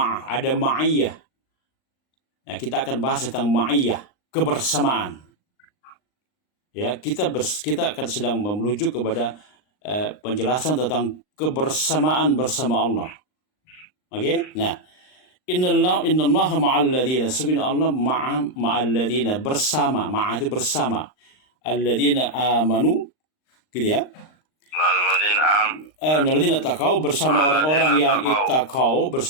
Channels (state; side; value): late; right; 39 ms